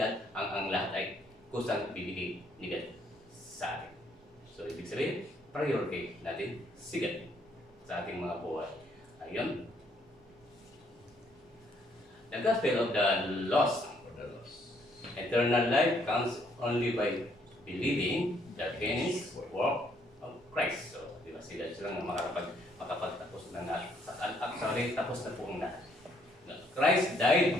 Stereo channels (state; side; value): normal; both; correlation 0.68